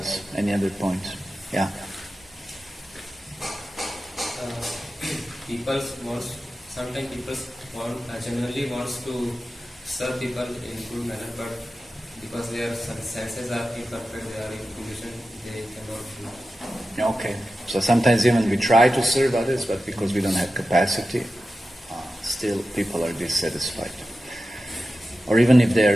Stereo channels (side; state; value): both; normal; correlation 0.93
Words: Any other points? Yeah. Sometimes people generally wants to serve people in good manner, but because their senses are imperfect, they are in condition, they cannot do. Okay. So sometimes even we try to serve others, but because we don't have capacity, still people are dissatisfied. Or even if they